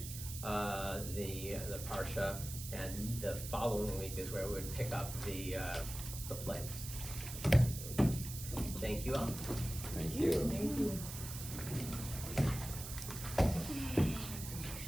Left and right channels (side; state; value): right; noise; hiss, 9 dB below the sound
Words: the Parsha, and the following week is where we would pick up the plagues. Thank you all. Thank you. Thank you.